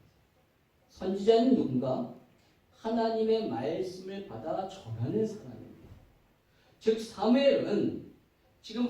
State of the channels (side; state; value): both; identical; correlation 1.00